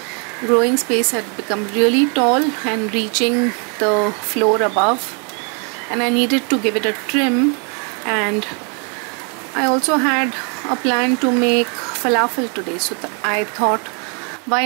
growing space had become really tall and reaching the floor above, and I needed to give it a trim. And I also had a plan to make falafel today, so I thought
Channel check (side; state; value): left; quieter; 38.3 dB